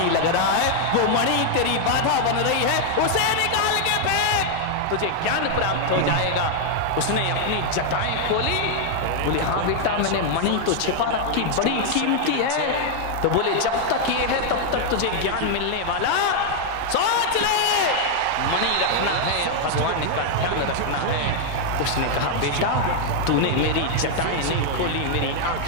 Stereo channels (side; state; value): both; different; correlation 0.00